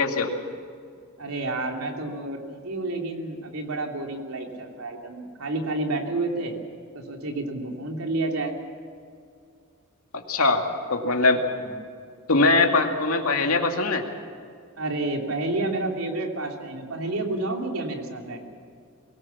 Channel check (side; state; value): both; normal; correlation -0.14